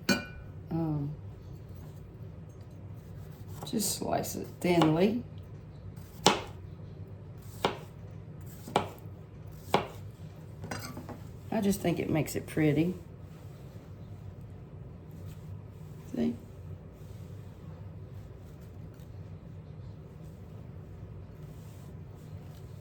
just slice it thinly. I just think it makes it pretty. See?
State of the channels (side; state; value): both; identical; correlation 1.00